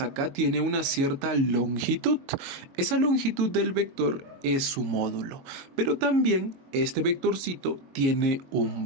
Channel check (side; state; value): left; late; 22 ms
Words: tiene una cierta longitud. Esa longitud del vector es su módulo, pero también este vectorcito tiene un